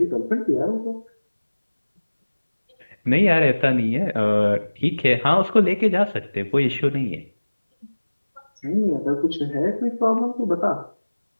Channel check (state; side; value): inverted; both; correlation -1.00